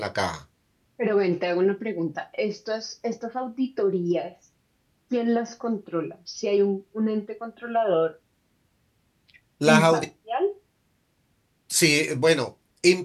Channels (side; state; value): both; identical; correlation 1.00